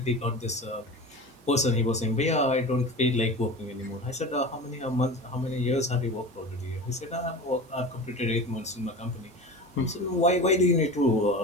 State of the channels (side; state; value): both; normal; correlation 0.32